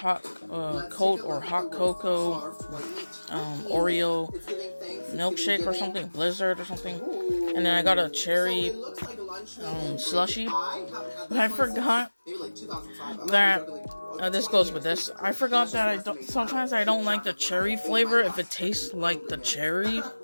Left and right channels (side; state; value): both; inverted; correlation -1.00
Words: coat or hot cocoa, Oreo milkshake or something, Blizzard or something, and then I got a cherry slushy. But I forgot that this goes with this. I forgot that sometimes I don't like the cherry flavor if it tastes like the cherry,